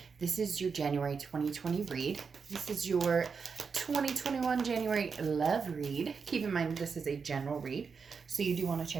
This is your January 2020 read. This is your 2021 January love read. Keep in mind this is a general read, so you do want to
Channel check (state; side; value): quieter; left; 5.6 dB